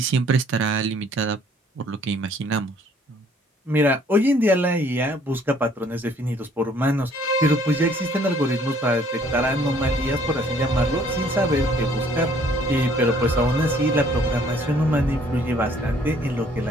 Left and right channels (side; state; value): both; normal; correlation 0.60